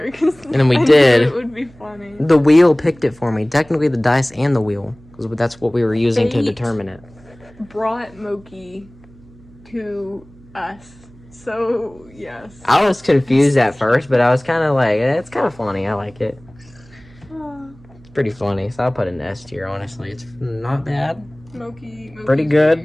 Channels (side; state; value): right; noise; hum, 25 dB below the sound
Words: And then we I did. knew it would be funny. The wheel picked it for me. Technically, the dice and the wheel, because that's what we were using to Fate determine it. Brought Mokey to us. So, yes. I was confused at first, but I was kind of like, it's kind of funny. I like it. It's pretty funny, so I'll put an S tier, honestly. It's not bad. Mokey's Pretty good.